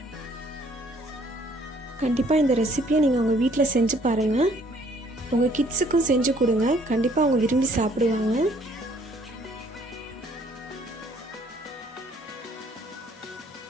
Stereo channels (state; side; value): normal; both; correlation 0.61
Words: கண்டிப்பாக இந்த ரெசிபியை நீங்கள் உங்கள் வீட்டில் செஞ்சு பாருங்கள். உங்கள் கிட்ஸுக்கும் செஞ்சு கொடுங்க, கண்டிப்பாக அவங்க விரும்பி சாப்பிடுவாங்க.